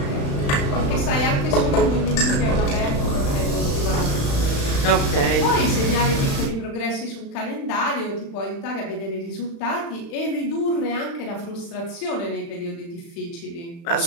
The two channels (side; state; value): right; late; 35 ms